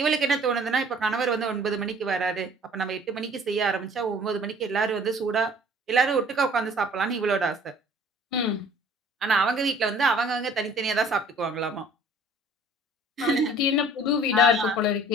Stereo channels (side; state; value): both; normal; correlation 0.52